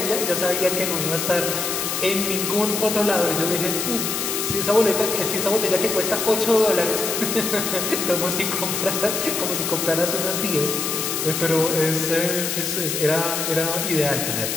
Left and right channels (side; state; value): left; noise; hiss, 1 dB below the sound